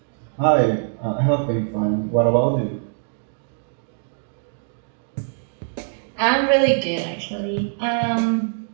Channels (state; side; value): silent; left; digital silence